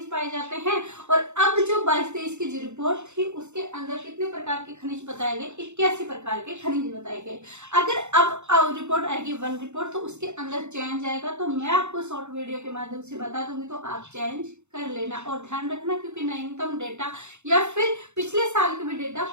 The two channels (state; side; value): late; left; 0.83 ms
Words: पाए जाते हैं। और अब जो 22-23 की जो रिपोर्ट थी उसके अंदर कितने प्रकार के खनिज बताए गए, 81 प्रकार के खनिज बताए गए। अगर अब रिपोर्ट आएगी वन रिपोर्ट, तो उसके अंदर चेंज आएगा, तो मैं आपको शॉर्ट वीडियो के माध्यम से बता दूंगी, तो आप चेंज कर लेना और ध्यान रखना, क्योंकि नवीनतम डेटा या फिर पिछले साल के भी डेटा